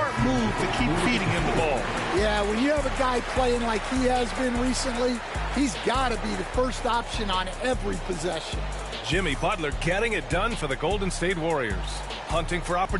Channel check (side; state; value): both; identical; correlation 1.00